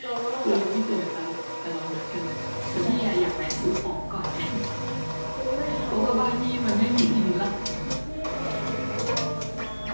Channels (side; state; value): both; inverted; correlation -1.00